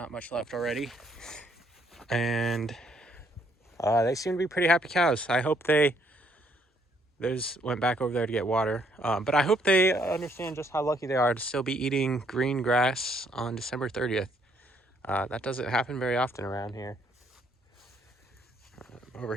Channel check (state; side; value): normal; both; correlation 0.69